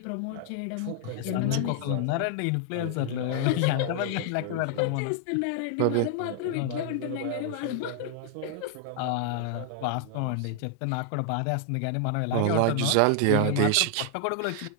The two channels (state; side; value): different; both; correlation 0.00